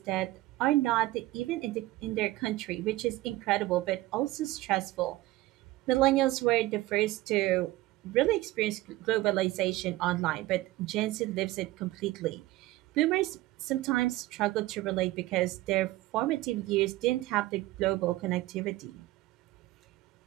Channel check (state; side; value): quieter; left; 18.0 dB